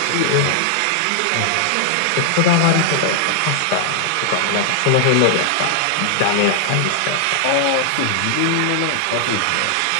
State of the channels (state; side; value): different; both; correlation 0.00